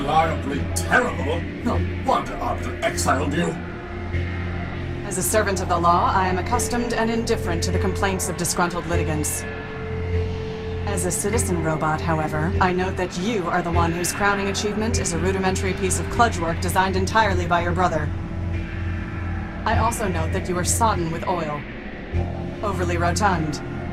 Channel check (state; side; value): identical; both; correlation 1.00